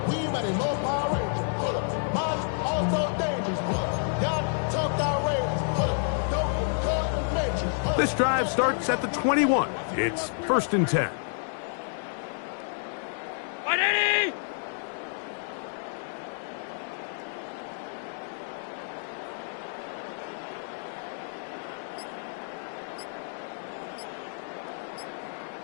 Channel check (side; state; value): right; silent; 58 dB below the other